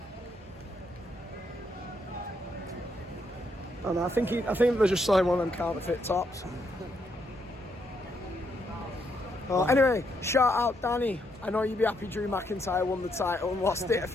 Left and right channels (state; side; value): normal; both; correlation 0.76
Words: And I think they're just selling one of them counterfeit tops. Anyway, shout out Danny. I know you'd be happy Drew McIntyre won the title and lost it a